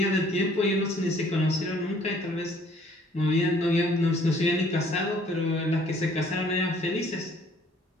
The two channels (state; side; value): normal; both; correlation 0.59